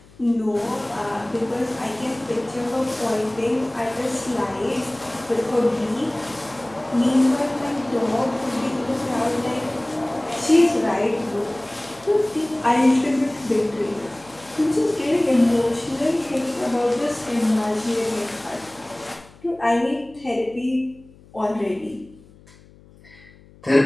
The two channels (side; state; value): left; noise; hum, 25 dB below the sound